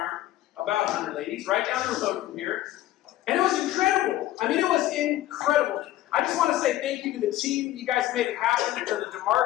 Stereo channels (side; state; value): right; quieter; 14.6 dB